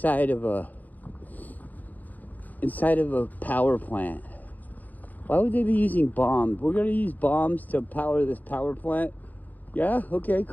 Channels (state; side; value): late; right; 0.082 ms